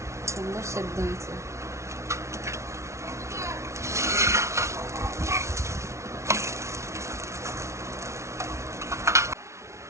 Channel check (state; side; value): late; left; 0.13 ms